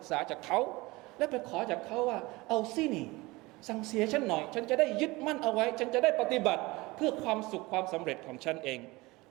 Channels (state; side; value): quieter; left; 22.1 dB